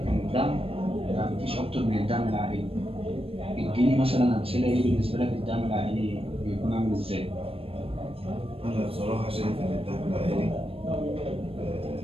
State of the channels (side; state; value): left; late; 0.28 ms